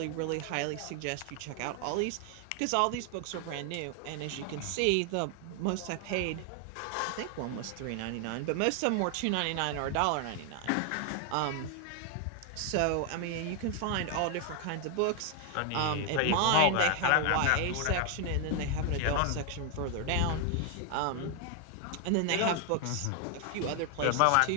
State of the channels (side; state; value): both; different; correlation 0.00